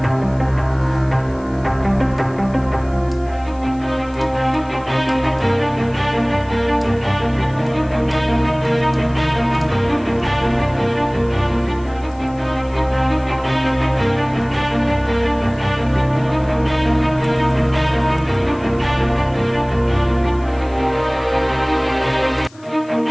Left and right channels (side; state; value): left; noise; hiss, 27 dB below the sound